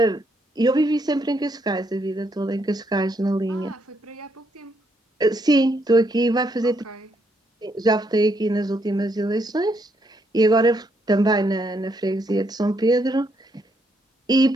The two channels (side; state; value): both; normal; correlation 0.75